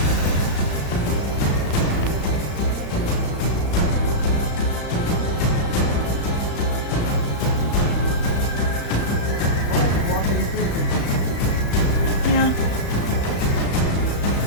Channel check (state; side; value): late; right; 35 ms